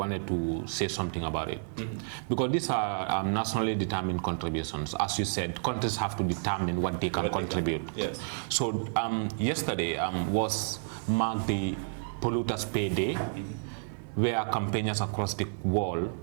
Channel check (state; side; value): silent; left; digital silence